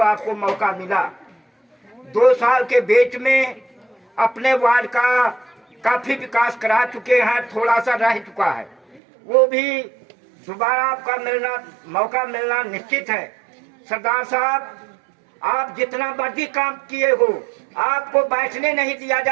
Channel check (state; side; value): drops out; left; at 9.0 s